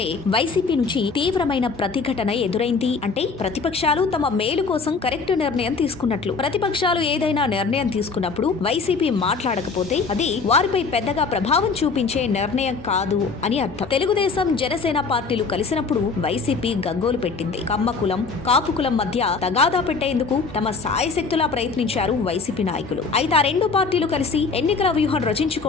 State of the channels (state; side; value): quieter; right; 4.7 dB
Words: వైసీపీ నుంచి తీవ్రమైన ప్రతిఘటన ఎదురైంది అంటే ప్రతిపక్షాలు తమ మేలు కోసం కరెక్ట్ నిర్ణయం తీసుకున్నట్లు. ప్రతిపక్షాలు ఏదైనా నిర్ణయం తీసుకున్నప్పుడు వైసీపీ మాట్లాడకపోతే అది వారిపై పెద్దగా ప్రభావం చూపించే నిర్ణయం కాదు అని అర్థం. తెలుగుదేశం జనసేన పార్టీలు కలిసినప్పుడు వైసీపీ గగ్గోలు పెట్టింది. కమ్మ కులం కాపు కులం మధ్య తగాదా పెట్టేందుకు తమ సాయశక్తులా ప్రయత్నించారు వైసీపీ నాయకులు. అయితే ఆ రెండు పార్టీలు కలిసి ఎన్నికల వ్యూహం